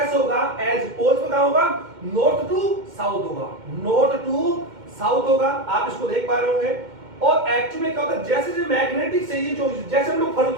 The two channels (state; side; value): late; left; 2.1 ms